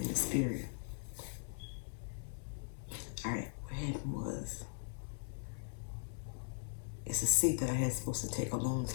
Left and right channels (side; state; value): right; silent; 51 dB below the other